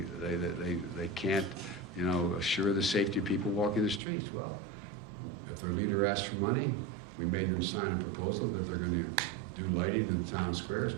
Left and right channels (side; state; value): left; drops out; at 4.0 s